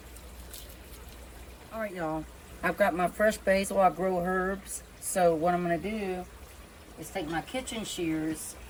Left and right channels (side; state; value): both; identical; correlation 1.00